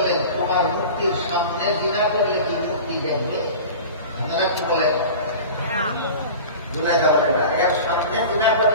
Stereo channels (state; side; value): inverted; both; correlation -0.35